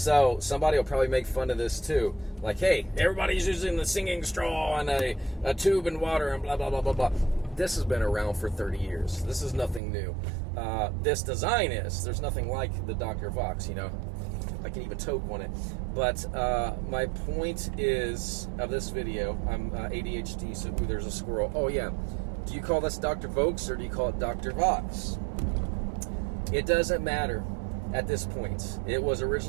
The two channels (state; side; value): drops out; left; at 9.8 s